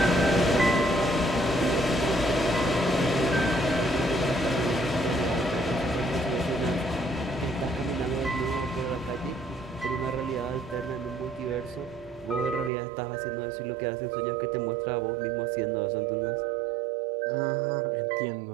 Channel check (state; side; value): drops out; left; at 12.7 s